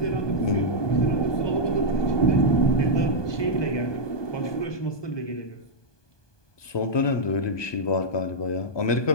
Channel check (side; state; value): right; late; 1.2 ms